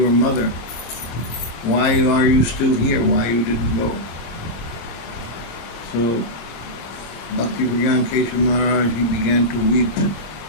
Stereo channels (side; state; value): right; late; 26 ms